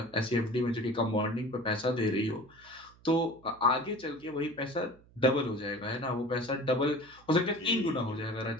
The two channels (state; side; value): noise; right; hum, 27 dB below the sound